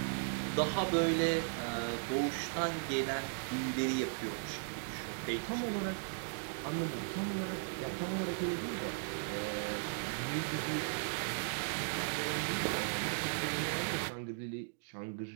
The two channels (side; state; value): left; silent; digital silence